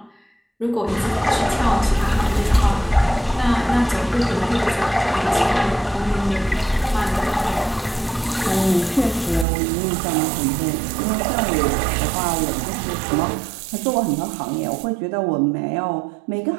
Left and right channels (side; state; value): left; drops out; at 9.5 s